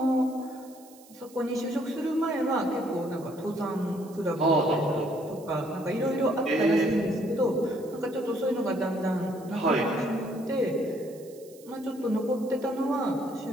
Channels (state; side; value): noise; right; hiss, 24 dB below the sound